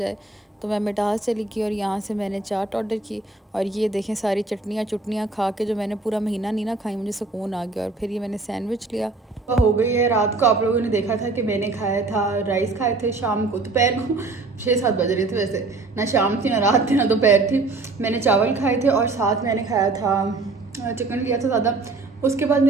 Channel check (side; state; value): left; quieter; 3.6 dB